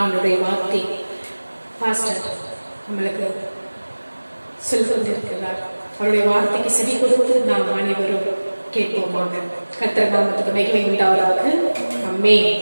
அவனுடைய வார்த்தை பாஸ்டர் நம்மளுக்கு சொல்லிருக்கிறார். அவருடைய வார்த்தைக்கு செவி கொடுத்து நாம் அனைவரும் கேட்போமாக. கர்த்தர் நாமத்துக்கு மகிமை உண்டாவதாக. ஆமென்.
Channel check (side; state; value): both; inverted; correlation -1.00